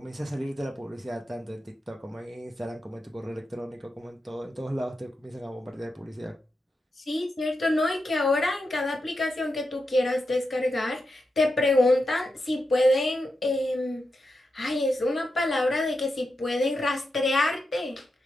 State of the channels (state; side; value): normal; both; correlation 0.88